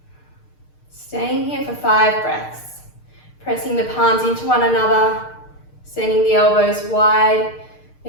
Staying here for 5 breaths. Pressing the palms into one another, sending the elbows wide.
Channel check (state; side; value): late; right; 6.6 ms